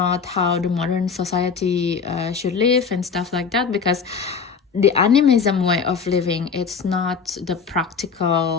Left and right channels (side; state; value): right; quieter; 5.8 dB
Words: how the modern society should live and stuff like that, because the animism way of living, it's not the